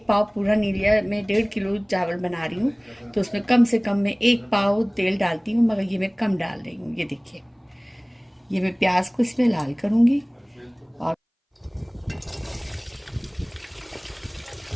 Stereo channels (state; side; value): identical; both; correlation 1.00